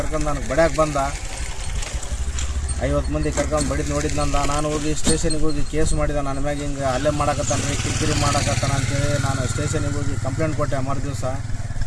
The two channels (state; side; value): identical; both; correlation 1.00